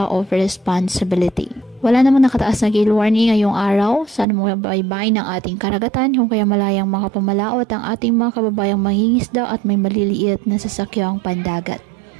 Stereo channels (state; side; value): drops out; left; at 4.2 s